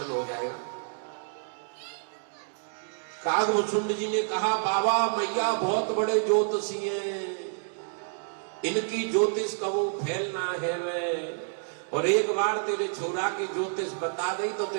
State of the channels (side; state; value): left; silent; digital silence